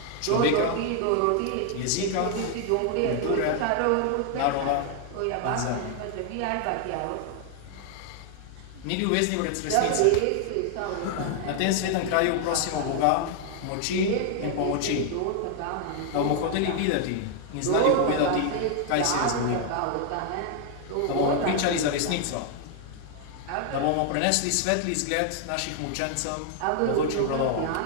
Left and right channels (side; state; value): both; different; correlation 0.00